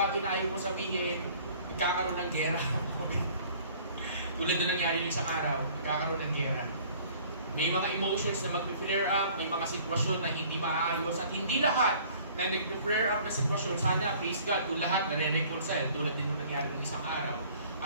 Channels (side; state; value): both; inverted; correlation -0.53